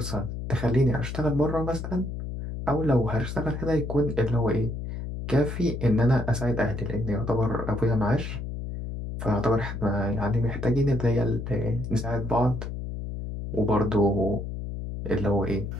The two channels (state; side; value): noise; left; hum, 6 dB below the sound